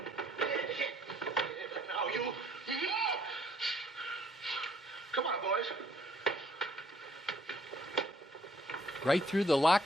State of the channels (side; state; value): both; normal; correlation 0.63